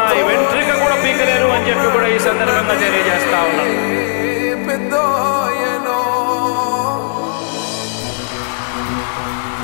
వెంట్రుక కూడా పీకలేరు అని చెప్పి కూడా ఈ సందర్భంగా తెలియజేస్తా ఉన్నాను.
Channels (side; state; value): right; silent; digital silence